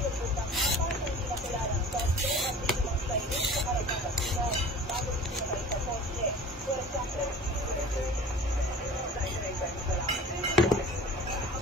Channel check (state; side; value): normal; both; correlation 0.41